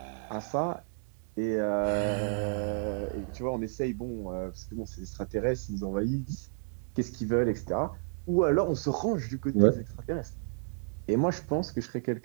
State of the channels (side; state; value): left; silent; digital silence